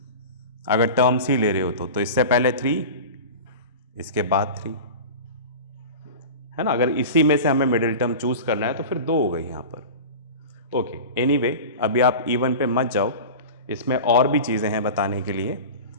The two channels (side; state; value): both; inverted; correlation -0.32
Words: अगर टर्म्स ही ले रहे हो तो इससे पहले 3, इसके बाद 3, है ना। अगर इसी में से हमें मिडिल टर्म चूज करना है तो फिर 2 हो गई यहां पर। ओके, एनीवे, अभी आप इवन पे मत जाओ, इसमें और भी चीजें हैं बताने के लिए।